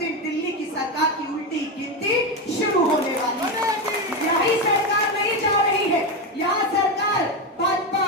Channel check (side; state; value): both; normal; correlation 0.12